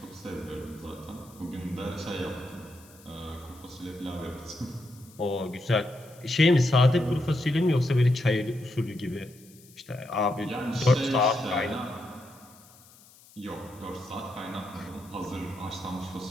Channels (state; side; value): noise; left; hiss, 24 dB below the sound